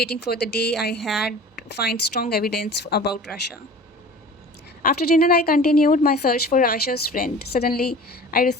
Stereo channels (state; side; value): normal; both; correlation 0.41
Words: for the day I had find strong evidence about Russia. After dinner, I continued my search for Rasha's friend. Suddenly, I